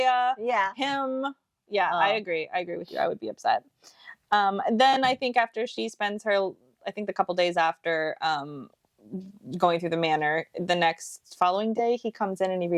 Yeah. Him. Yeah, I agree. I agree with you. I would be upset. Then I think after she spends the couple days after, going through the manor, the next following day he comes in and he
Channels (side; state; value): both; identical; correlation 1.00